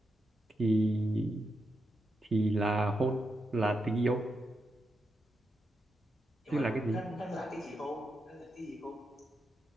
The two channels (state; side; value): normal; both; correlation 0.85